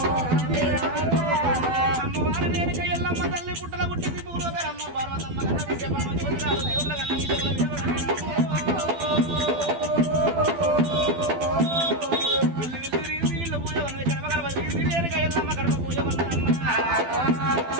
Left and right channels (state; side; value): late; left; 12 ms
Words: అమ్మవారు నేనుక ఎల్లమ్మ తల్లి పుట్టల పుట్టింది పూర్వకరమ్మ పార్వతమ్మ కన్న విద్య పరమ జ్యోతిరాలు దేవుళ్ళ కన్న విద్యముల వీళ్ళు పూజ ఉన్నది కడప కడప తిరిగి నేనుక ఎల్లమ్మ కడప పూజ ఉన్నదమ్మ